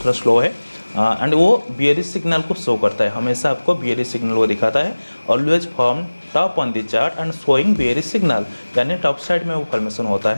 स्लो है। एंड वो बियरिश सिग्नल को शो करता है, हमेशा आपको बियरिश सिग्नल को दिखाता है। Always form top on the chart and showing bearish signal, यानी टॉप साइड में वो फॉर्मेशन होता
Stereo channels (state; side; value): inverted; both; correlation -1.00